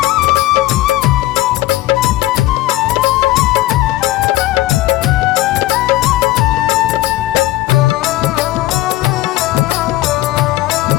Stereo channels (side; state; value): right; quieter; 16.4 dB